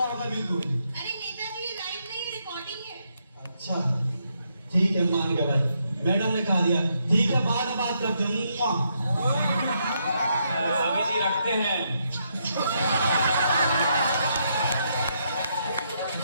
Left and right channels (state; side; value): inverted; both; correlation -0.77